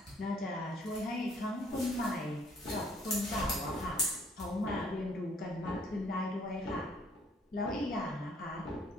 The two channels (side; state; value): both; normal; correlation 0.62